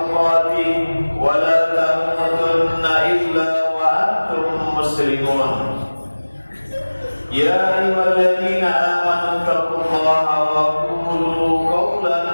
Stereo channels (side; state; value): both; inverted; correlation -1.00